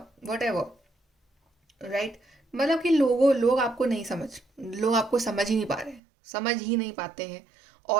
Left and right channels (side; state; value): left; drops out; at 6.0 s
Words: वट एवर, राइट। मतलब कि लोग आपको नहीं लोग आपको समझ ही नहीं पा रहे, समझ ही नहीं पाते हैं।